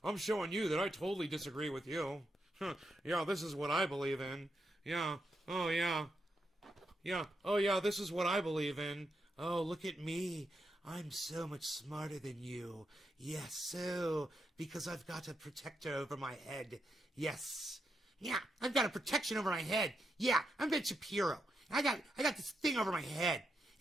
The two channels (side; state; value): both; normal; correlation 0.83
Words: I'm showing you that I totally disagree with you. Yeah, this is what I believe in. Yeah. Oh, yeah. Yeah. Oh, yeah, this is what I believe in. Oh, look at me. I'm so much smarter than you. Yes, so, because I've got a protector over my head. Yes. Yeah, I've got a protection over my head. Yeah, I'm Ben Shapiro. I got this thing over my head.